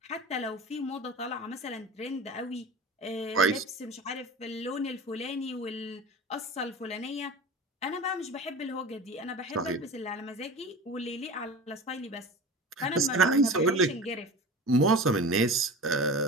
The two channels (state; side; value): normal; both; correlation 0.34